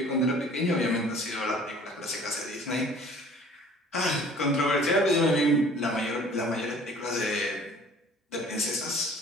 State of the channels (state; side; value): normal; both; correlation 0.50